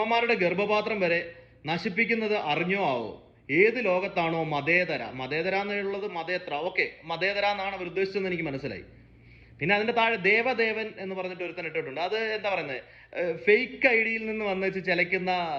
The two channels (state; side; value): identical; both; correlation 1.00